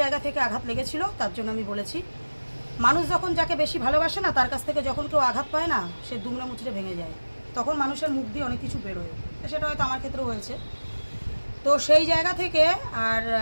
থেকে আঘাত লেগেছিল, তার জন্য আমি বলেছি। মানুষ যখন যাকে বেশি ভালোবাসে না, তার কাছ থেকে যখন কেউ আঘাত পায় না, সে দুমড়ে মুচড়ে ভেঙে যায়, তখন মানুষের মুখ দিয়ে অনেক কিছু বেরোয়। সেটা হয়তো আমার ক্ষেত্রেও হয়েছে। তো সেই জায়গা থেকে আর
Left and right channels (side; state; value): both; inverted; correlation -1.00